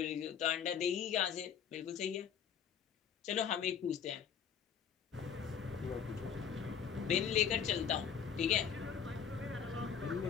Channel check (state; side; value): quieter; right; 7.7 dB